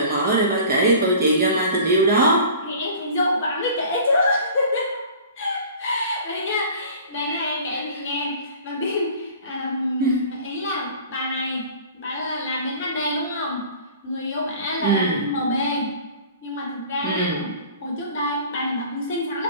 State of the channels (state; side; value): inverted; both; correlation -0.44